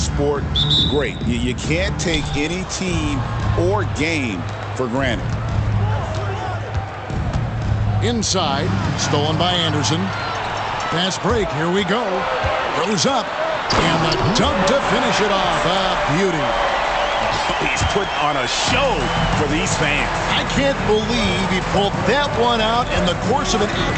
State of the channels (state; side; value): identical; both; correlation 1.00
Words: great. You can't take any team or game for granted. Inside, stolen by Anderson. Fast break, here we go. Goes up, and the dunk to finish it off. A beauty. He's put on a show for these fans. I can't believe he pulled that one out in the course of an